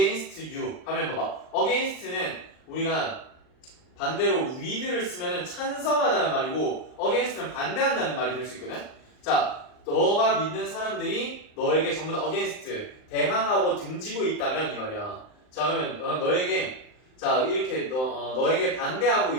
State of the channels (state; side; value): late; right; 39 ms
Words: you 하면 봐봐. against는 우리가 반대로 with를 쓰면은 찬성하다는 말이고 against는 반대한다는 말이 될 수 있거든. 자 너가 믿는 사람들이 너에게 전부 다 against 대항하고 등지고 있다면 이 말이야. 자 그러면 너에게 자 이렇게 너에게 반대하고